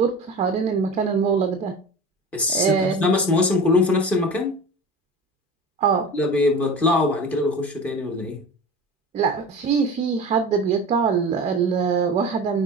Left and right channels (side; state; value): both; normal; correlation 0.33